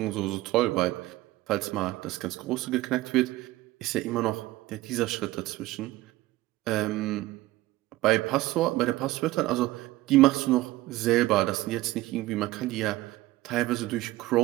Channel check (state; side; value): quieter; left; 17.7 dB